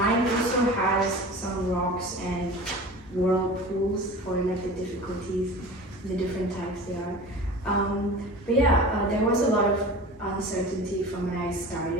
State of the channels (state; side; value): normal; both; correlation 0.36